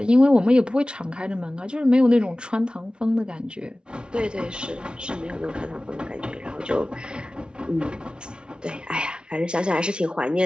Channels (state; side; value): late; left; 0.055 ms